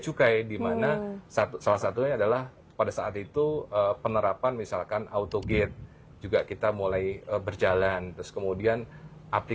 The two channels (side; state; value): both; identical; correlation 1.00